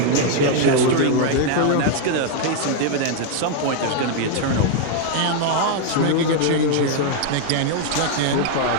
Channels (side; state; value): both; different; correlation 0.00